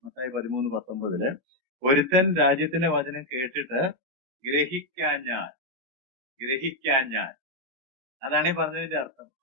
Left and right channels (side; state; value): left; late; 16 ms